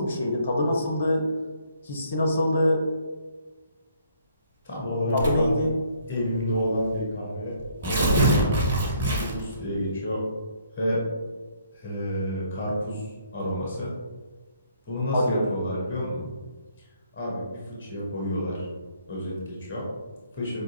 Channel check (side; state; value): both; inverted; correlation -0.65